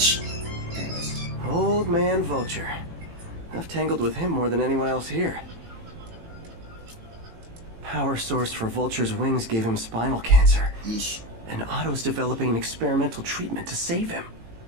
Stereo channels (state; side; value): late; left; 18 ms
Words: Anyways. Old man Vulture. I've tangled with him more than anyone else here. Power source for Vulture's wings gave him spinal cancer. Yeesh. And Otto's developing an experimental treatment to save him.